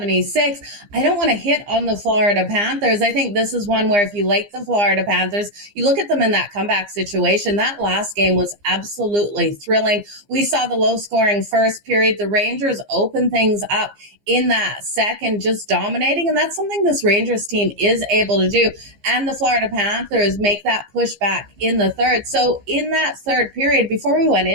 I don't want to hit on the Florida Panthers. I think this is one where if you like the Florida Panthers, you look at them in that comeback situation. That last game was absolutely thrilling. We saw the low-scoring first period. The Rangers open things up in that second, just dominating. And that's something this Rangers team is able to do. And the Florida Panthers make that pushback in the third. So in that third period, before we went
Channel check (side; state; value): left; late; 15 ms